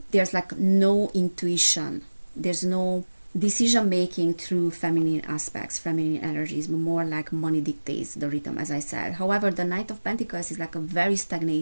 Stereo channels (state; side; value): inverted; both; correlation -1.00